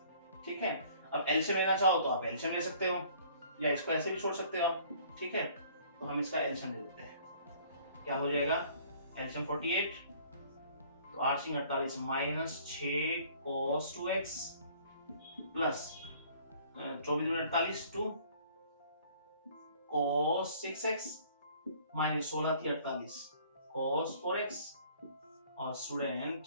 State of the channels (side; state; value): both; inverted; correlation -0.55